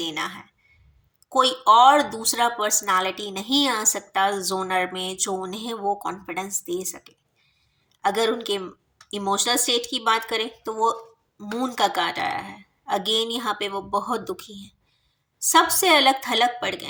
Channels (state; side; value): identical; both; correlation 1.00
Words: है। कोई और दूसरा पर्सनालिटी नहीं आ सकता जोनर में जो उन्हें वो कॉन्फिडेंस दे सके। अगर उनके इमोशनल स्टेट की बात करें तो वो मून का कार्ड आया है। अगेन यहाँ पे वो बहुत दुखी हैं, सबसे अलग थलग पड़ गए